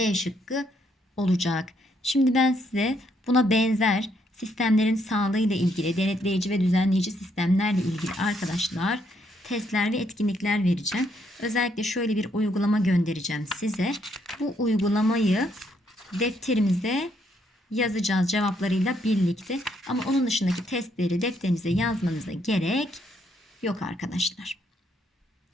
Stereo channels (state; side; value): normal; both; correlation 0.72